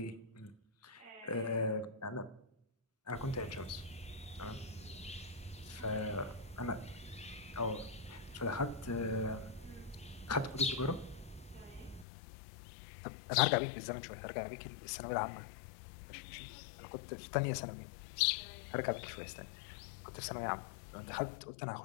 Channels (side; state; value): right; drops out; at 12.1 s